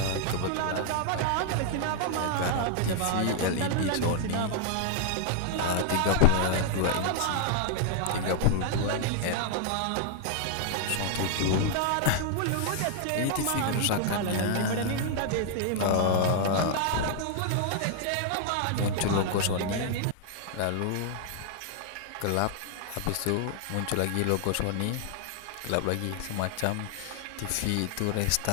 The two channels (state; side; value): different; both; correlation 0.00